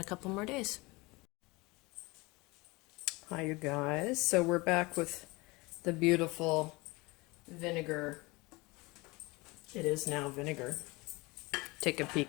couple more days. Hi you guys. So we're back with the beautiful vinegar. It is now vinegar. Take a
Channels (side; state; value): right; quieter; 24.0 dB